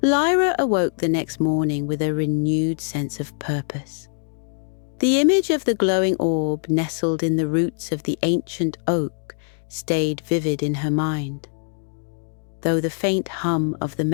Lyra awoke the next morning with a renewed sense of purpose. The image of the glowing orb nestled in the roots of the ancient oak stayed vivid in her mind. Though the faint hum of the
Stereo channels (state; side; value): silent; right; digital silence